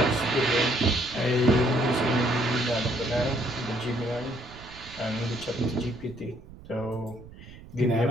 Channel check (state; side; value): noise; right; rumble, 18 dB below the sound